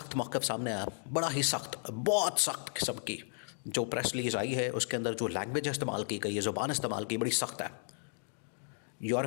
मौक़िफ़ सामने आया, बड़ा ही सख्त, बहुत सख्त किस्म की जो प्रेस रिलीज़ आई है उसके अंदर जो लैंग्वेज इस्तेमाल की गई है, ज़ुबान इस्तेमाल की, बड़ी सख्त है।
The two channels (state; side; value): silent; right; digital silence